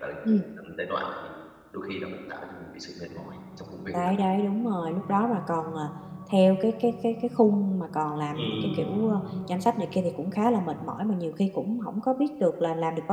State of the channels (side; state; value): both; identical; correlation 1.00